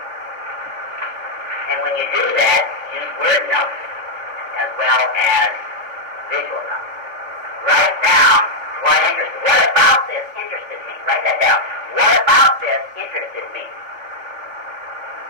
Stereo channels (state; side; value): late; left; 3.5 ms